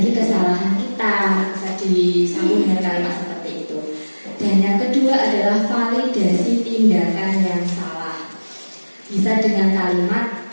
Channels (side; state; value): both; inverted; correlation -1.00